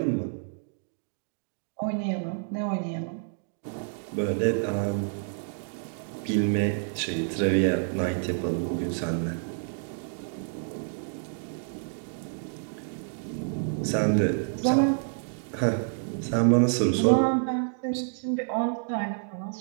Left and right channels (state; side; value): silent; left; digital silence